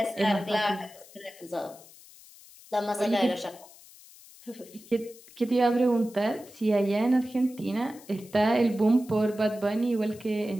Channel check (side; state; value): left; noise; hiss, 22 dB below the sound